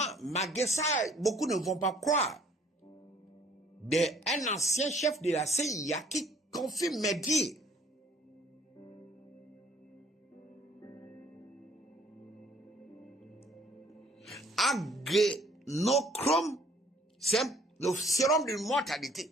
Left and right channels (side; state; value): both; normal; correlation 0.59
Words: malgré ça, beaucoup ne vont pas croire, d'un ancien chef de la CIA qui confirme mes dires. Adrénochrome, c'est le sérum de